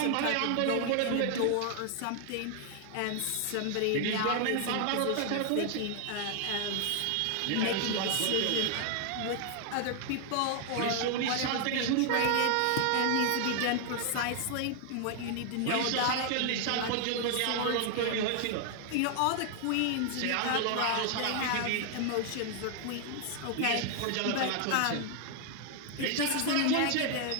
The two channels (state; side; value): different; both; correlation 0.00